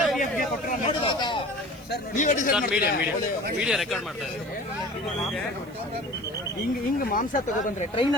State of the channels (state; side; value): noise; right; hiss, 27 dB below the sound